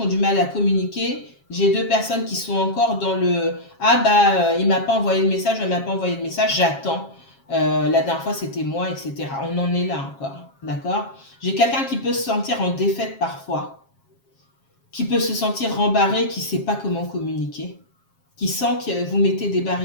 du mal à communiquer. J'ai deux personnes qui sont encore dans le « Ah bah, il m'a pas envoyé de message, elle m'a pas envoyé de message, j'attends. La dernière fois, c'était moi, etc. » On en est là encore, d'accord? J'ai quelqu'un qui peut se sentir en défaite parfois, qui peut se sentir rembarré, qui ne sait pas comment communiquer, qui sent que vous mettez des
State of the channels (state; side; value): late; right; 7.4 ms